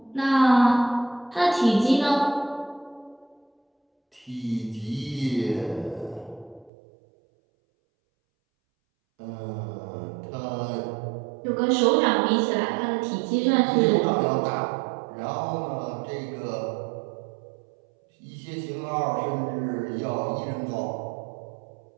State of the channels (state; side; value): drops out; left; at 6.7 s